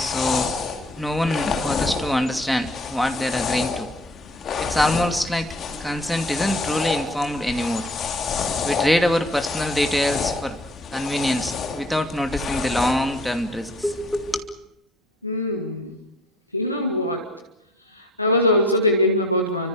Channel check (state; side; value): normal; both; correlation 0.50